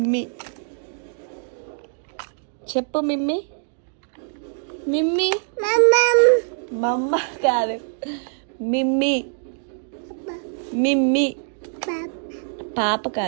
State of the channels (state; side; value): silent; left; 63 dB below the other